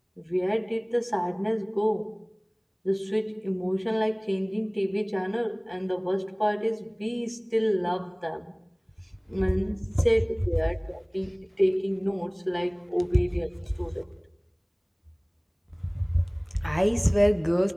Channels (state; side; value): identical; both; correlation 1.00